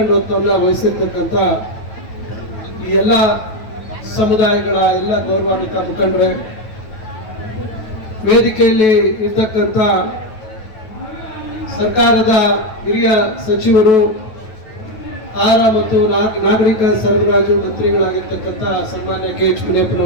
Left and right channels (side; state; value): right; late; 9.2 ms